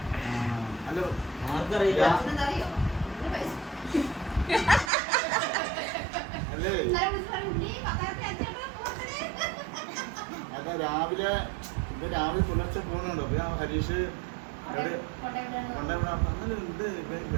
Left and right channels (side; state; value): left; drops out; at 4.9 s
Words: ഹലോ ആർക്കറിയില്ല. അല്ലേ അതാ രാവിലെ പുലർച്ചെ പോകുന്നുണ്ടോ? അപ്പൊ ഞാൻ ഹരീഷ് ഉണ്ട്